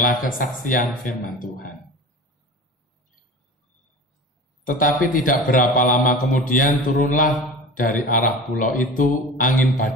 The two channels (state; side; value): normal; both; correlation 0.35